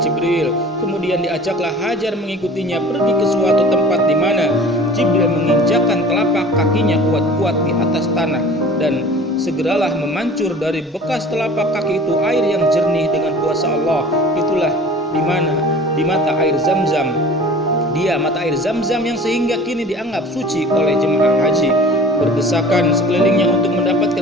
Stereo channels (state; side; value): normal; both; correlation 0.43